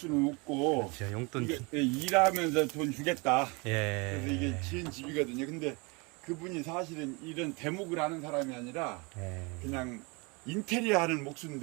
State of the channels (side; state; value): left; quieter; 28.8 dB